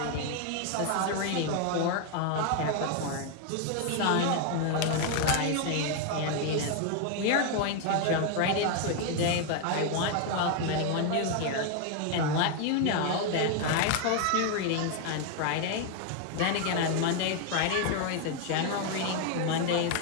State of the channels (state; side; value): different; both; correlation 0.01